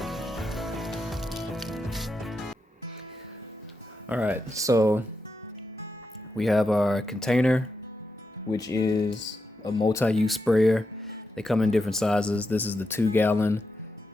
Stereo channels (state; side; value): normal; both; correlation 0.86